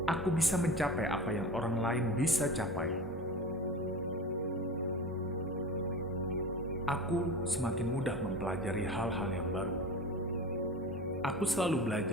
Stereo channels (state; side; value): normal; both; correlation 0.31